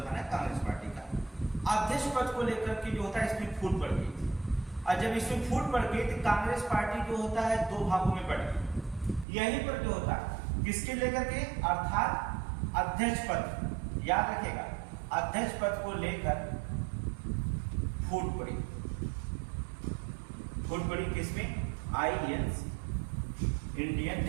था ना कांग्रेस पार्टी का, अध्यक्ष पद को लेकर के जो होता है इसमें फूट पड़ गई थी। और जब इसमें फूट पड़ गई तो कांग्रेस पार्टी जो होता है दो भागों में बढ़ गई। यहीं पर जो होता है किसके लेकर के, अर्थात अध्यक्ष पद, याद रखेगा अध्यक्ष पद को लेकर फूट पड़ी। फूट पड़ी किसमें, आईएनसी, इंडियन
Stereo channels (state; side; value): drops out; left; at 9.2 s